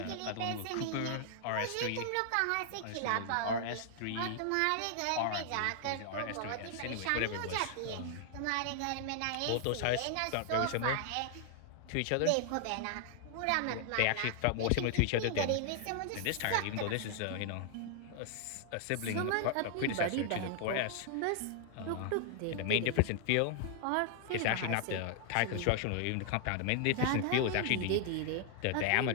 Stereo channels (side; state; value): both; different; correlation -0.01